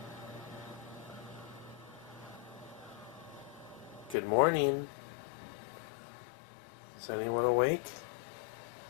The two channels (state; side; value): drops out; right; at 4.2 s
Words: Good morning. Is anyone awake?